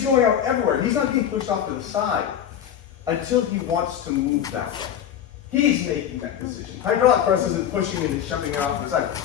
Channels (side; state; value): right; quieter; 9.8 dB